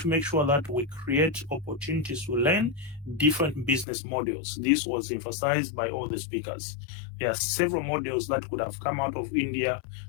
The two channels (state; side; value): drops out; right; at 3.9 s